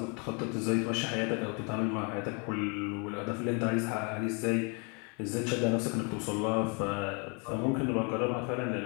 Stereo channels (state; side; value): quieter; right; 34.9 dB